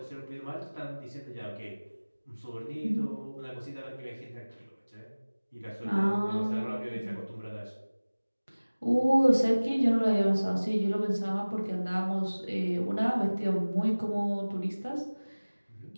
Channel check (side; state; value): both; inverted; correlation -1.00